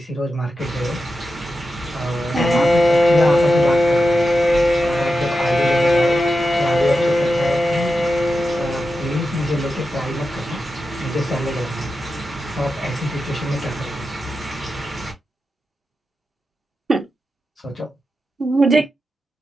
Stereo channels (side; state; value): both; normal; correlation 0.90